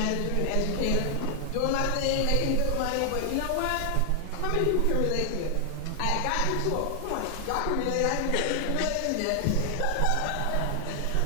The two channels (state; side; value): different; both; correlation 0.00